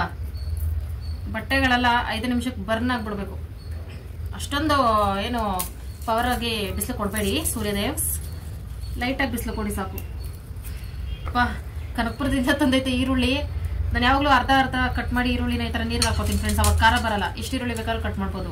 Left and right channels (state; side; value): identical; both; correlation 1.00